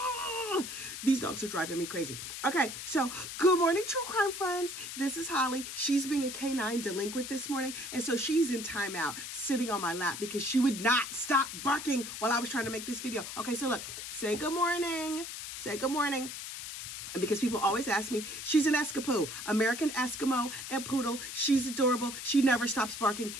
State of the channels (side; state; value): left; noise; hiss, 8 dB below the sound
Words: these dogs are driving me crazy. Okay, so good morning, true crime friends. This is Holly. She's being a canine delinquent this morning, and so she's in timeout, sitting on my lap because she would not stop barking while I was trying to make this video. Okay, so look, say good morning. Say good morning. And because people always ask me, she's an Escapoo, American Eskimo and Poodle. She's adorable. She never stops barking.